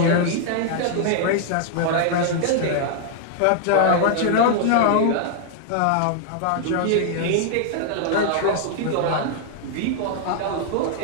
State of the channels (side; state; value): both; different; correlation 0.00